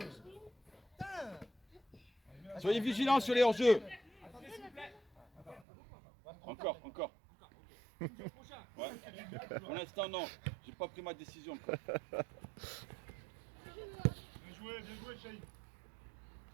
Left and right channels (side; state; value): left; drops out; at 5.7 s